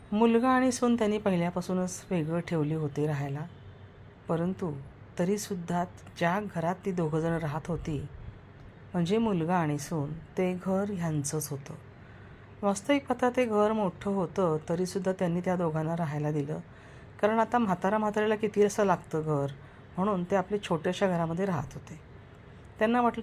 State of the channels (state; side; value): identical; both; correlation 1.00